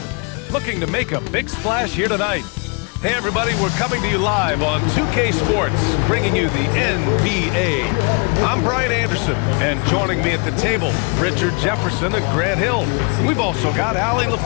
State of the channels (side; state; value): right; quieter; 35.5 dB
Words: looking to make a big splash here tonight. Hey everybody, we're coming to you live on 2K Sports, bringing you the NBA. I'm Brian Anderson, and joining me at the table, Richard Jefferson and Grant Hill. We've also got Allie